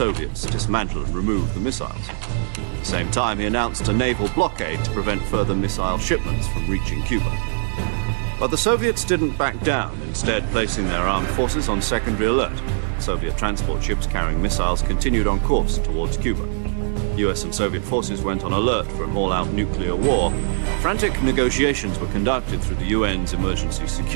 dismantle and remove the missiles. At the same time, he announced a naval blockade to prevent further missile shipments from reaching Cuba. But the Soviets didn't back down, instead placing their armed forces on secondary alert. Soviet transport ships carrying missiles continued on course towards Cuba. US and Soviet forces went on alert for an all-out nuclear war. Frantic negotiations were conducted through the UN's Emergency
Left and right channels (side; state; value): left; silent; digital silence